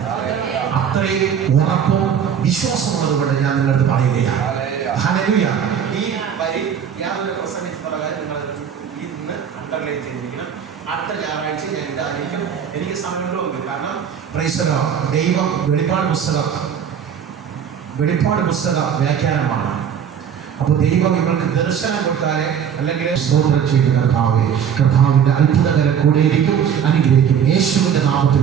അത്രയും ഉറപ്പും വിശ്വാസമുള്ളത് കൊണ്ട് ഞാൻ നിങ്ങളുടെ അടുത്ത് പറയുകയാണ്. ഹല്ലേലൂയ. ഈ വരി ഞാൻ ഒരു പ്രസംഗിച്ച് പറയാൻ നിങ്ങൾ ഇന്ന് അണ്ടർലൈൻ ചെയ്തിരിക്കണം. അടുത്ത ഞായറാഴ്ച ഞാൻ ഇതായിരിക്കും. എനിക്ക് സമയമുണ്ടോ? കാരണം പ്രൈസ് ദി ലോർഡ്. ദൈവം വെളിപ്പാട് പുസ്തക വ്യാഖ്യാനമാണ്. അപ്പൊ ദൈവം നിങ്ങൾക്ക് ദർശനം കൊടുത്താലേ, അല്ലെങ്കിൽ സ്തോത്രം ചെയ്ത് കർത്താവിന്റെ അത്ഭുതകരം കൂടെയിരിക്കും, അനുഗ്രഹിക്കും. യേശുവിന്റെ നാമത്തിൽ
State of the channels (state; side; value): quieter; left; 8.0 dB